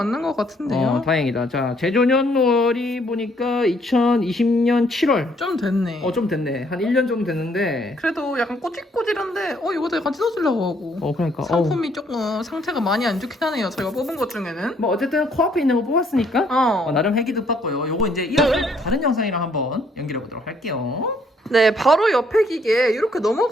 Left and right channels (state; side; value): normal; both; correlation 0.67